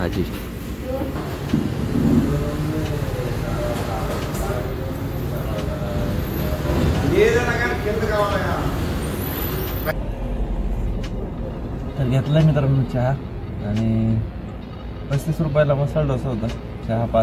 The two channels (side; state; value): both; identical; correlation 1.00